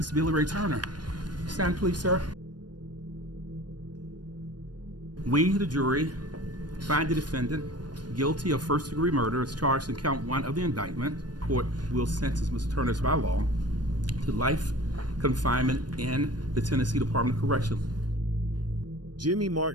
Billy Ray Turner. Stand, please, sir. We, the jury, find the defendant guilty of first-degree murder as charged in count 1 of the indictment. Court will sentence Mr. Turner by law to life confinement in the Tennessee Department of Corrections. Jimmy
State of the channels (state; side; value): late; left; 0.70 ms